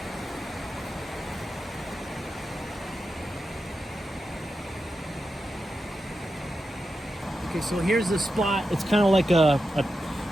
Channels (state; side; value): normal; both; correlation 0.89